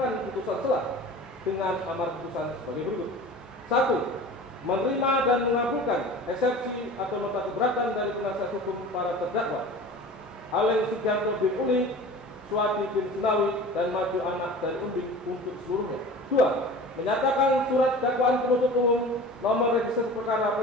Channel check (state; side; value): normal; both; correlation 0.38